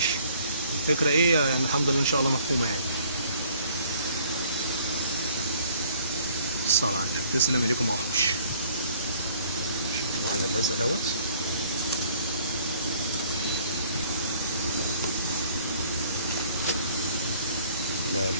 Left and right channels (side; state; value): both; inverted; correlation -0.58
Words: الفكره ايه يعني الحمد لله ان شاء الله مفهومه يعني. الصلاة على النبي. تسلم ايديكم يا وحوش. شوفوا على اللزق دوت.